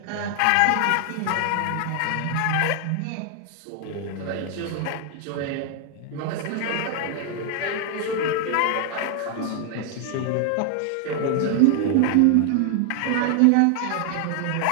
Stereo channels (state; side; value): different; both; correlation 0.00